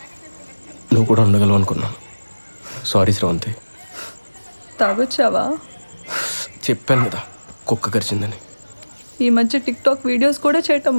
నువ్వు కూడా ఉండగలవు అనుకున్నాను. సారీ శ్రవంతి. తాగొచ్చావా? చెప్పాను కదా కుక్క కరిచిందని. ఈ మధ్య టిక్టాక్ వీడియోస్ కూడా చేయటం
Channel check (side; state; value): both; inverted; correlation -1.00